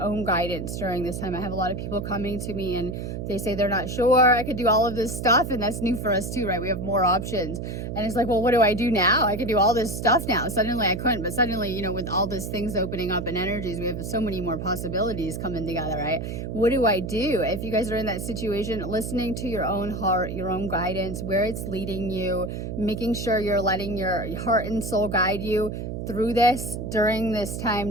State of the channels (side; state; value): right; noise; hum, 5 dB below the sound